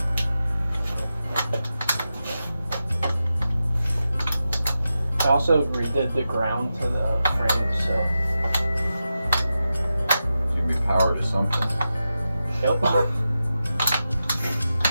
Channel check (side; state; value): both; inverted; correlation -0.91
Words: I also redid the ground to the frame, so. it's gonna be power to something. Yep.